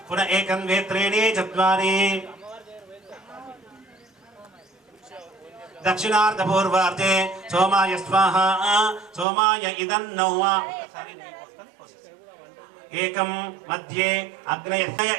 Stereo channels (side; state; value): left; drops out; at 9.2 s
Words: पुनः एकं द्वे त्रीणि चत्वारि दक्षिणार्धपूर्वार्धे सोमाय स्वाहा सोमाय इदन्न एकं मध्ये अग्नय